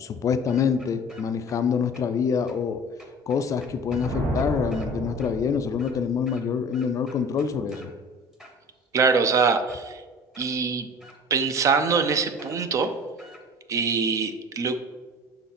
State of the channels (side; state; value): both; normal; correlation 0.41